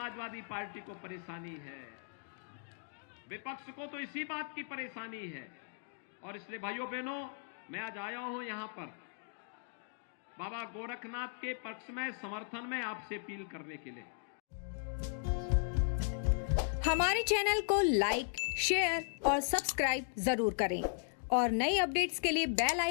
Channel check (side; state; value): right; silent; digital silence